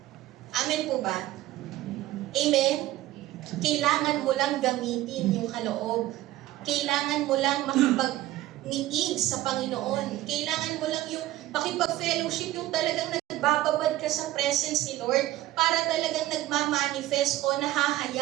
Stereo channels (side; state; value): left; quieter; 15.5 dB